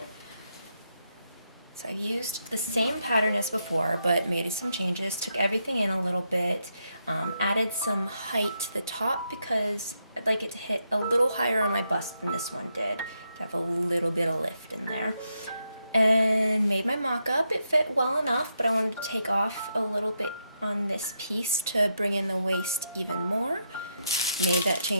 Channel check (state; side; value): inverted; both; correlation -0.81